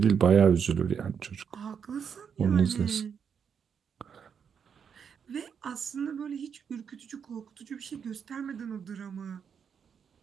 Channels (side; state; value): left; quieter; 7.1 dB